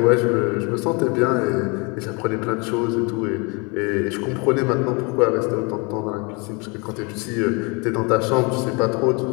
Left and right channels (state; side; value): quieter; right; 30.4 dB